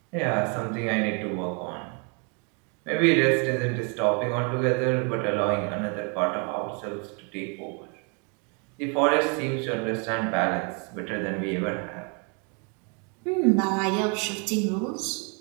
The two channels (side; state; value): left; quieter; 36.2 dB